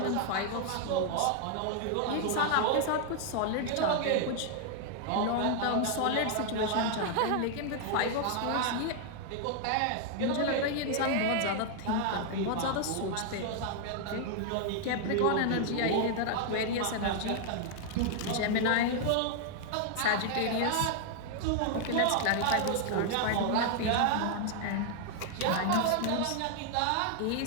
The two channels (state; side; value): different; both; correlation 0.00